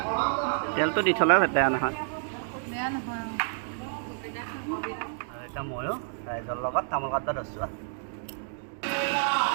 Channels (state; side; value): silent; left; digital silence